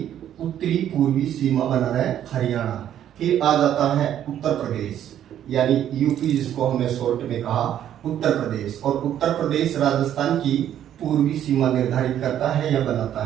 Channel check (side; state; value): left; quieter; 10.7 dB